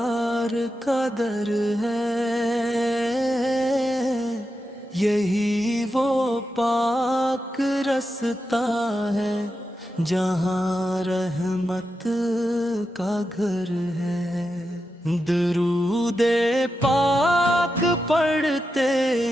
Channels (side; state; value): both; normal; correlation 0.88